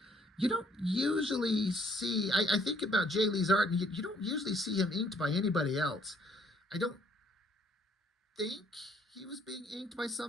you don't usually see, I think about Jae Lee's art, and you don't usually see him inked by anybody else. I don't think he was being inked by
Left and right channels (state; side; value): normal; both; correlation 0.64